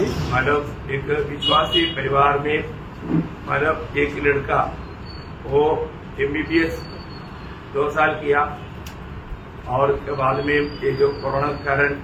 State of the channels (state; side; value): identical; both; correlation 1.00